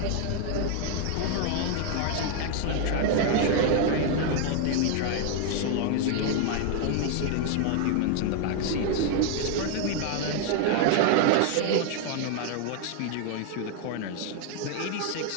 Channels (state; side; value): different; both; correlation 0.00